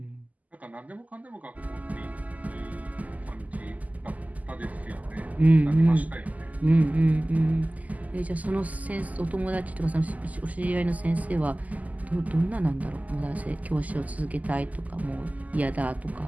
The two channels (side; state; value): left; late; 0.077 ms